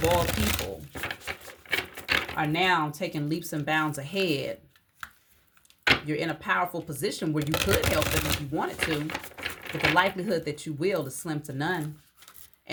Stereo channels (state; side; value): identical; both; correlation 1.00